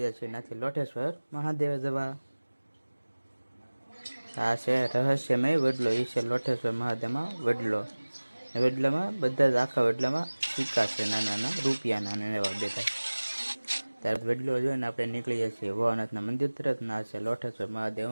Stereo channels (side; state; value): both; inverted; correlation -1.00